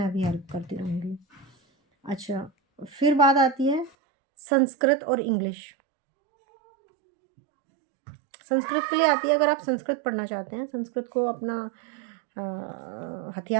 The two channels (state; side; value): drops out; left; at 3.9 s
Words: भी हेल्प करती रहूँगी। अच्छा, फिर बात आती है संस्कृत और इंग्लिश। संस्कृत के लिए आती है, अगर आप संस्कृत पढ़ना चाहते हैं, संस्कृत को अपना